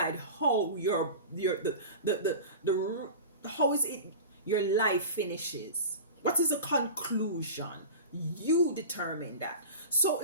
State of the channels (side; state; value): both; inverted; correlation -0.32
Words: how how is it your life finishes. What is the conclusion? You determine that. So